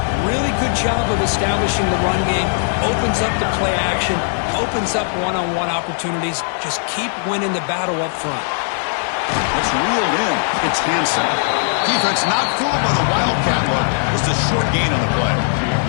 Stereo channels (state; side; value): silent; right; digital silence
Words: really good job of establishing the run game. Opens up the play action, opens up one-on-one opportunities. Just keep winning the battle up front. It's reeled in. It's Hansen. Defense not fooled by the Wildcat look. Just a short gain on the play.